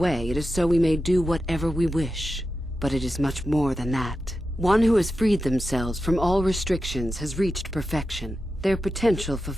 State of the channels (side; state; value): both; normal; correlation 0.91